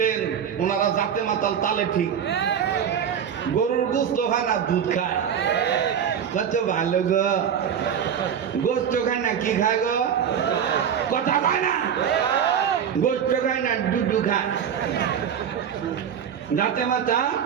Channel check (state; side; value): quieter; left; 8.3 dB